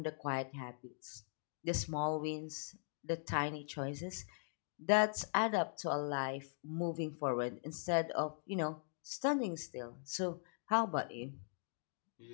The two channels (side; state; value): right; silent; digital silence